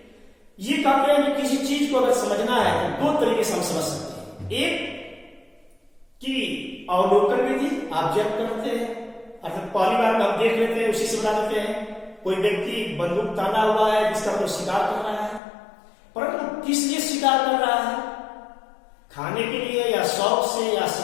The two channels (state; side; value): drops out; right; at 15.4 s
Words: ये कहते हैं कि किसी चीज को अगर समझना है तो दो तरीके से हम समझ सकते हैं, एक कि अवलोकन विधि, ऑब्जर्व करते हैं, अर्थात पहली बार हम देख लेते हैं, उसी से बता देते हैं। कोई व्यक्ति बंदूक ताना हुआ है, जिसका कोई शिकार कर रहा है, परंतु किस लिए शिकार कर रहा है, खाने के लिए या शौक से या